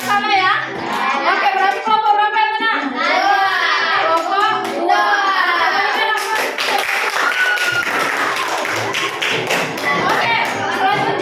sana ya. Oke, berarti kelompok berapa yang menang? 2. Kelompok 2. Oke,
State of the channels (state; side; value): identical; both; correlation 1.00